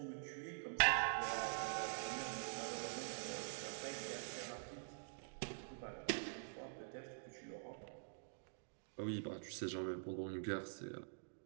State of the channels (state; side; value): silent; left; digital silence